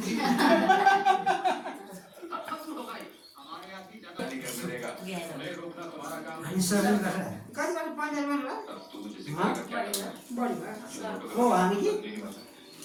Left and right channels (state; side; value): identical; both; correlation 1.00